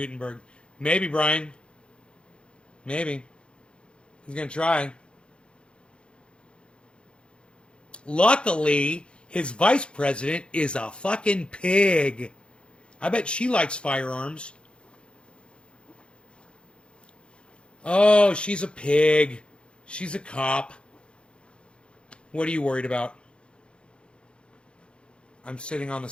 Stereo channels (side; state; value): right; late; 0.056 ms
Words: Maybe, Brian. Maybe. He's going to try. Luckily, his vice president is a fucking pig. I bet she likes firearms. Oh, she's a pig. She's a cop. What are you worried about? I'm sitting on the